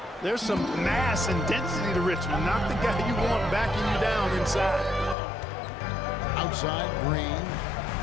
There's some mass and density to Richmond, not the guy you want backing you down inside. Outside, Green.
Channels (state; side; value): drops out; right; at 5.2 s